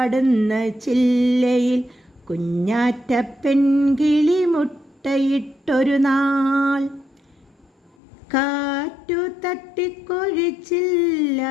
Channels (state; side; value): drops out; right; at 8.0 s